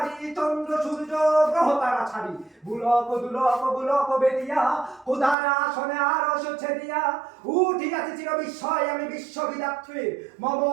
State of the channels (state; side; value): drops out; left; at 5.4 s